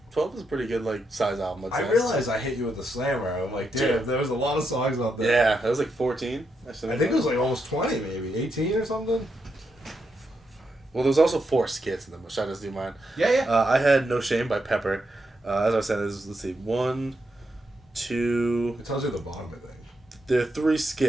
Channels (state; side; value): normal; both; correlation 0.82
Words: is a pretty good like size album. I'd I say. realized I hit you with the slammer. I'm like, damn, Dude. there was a lot of songs out there. Yeah, that was like 14. I think it was like almost 20, maybe 18 or something. Well, there was also 4 skits in them. Should I just do mine? Yeah, yeah. I had No Shame by Pepper. As I said, let's see, 1, 2. It tells you the bottom, I think. There